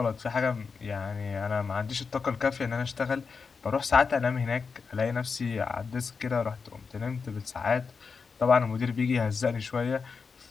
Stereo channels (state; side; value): quieter; right; 5.2 dB